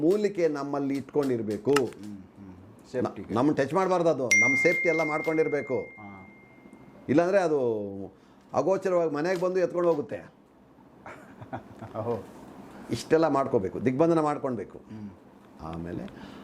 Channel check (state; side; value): identical; both; correlation 1.00